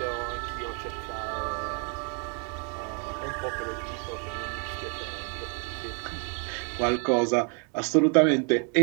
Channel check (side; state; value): left; quieter; 39.4 dB